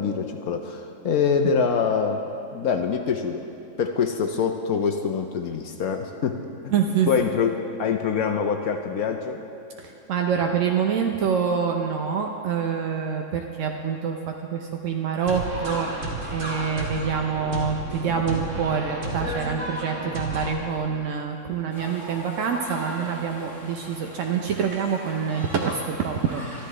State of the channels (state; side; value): late; left; 3.6 ms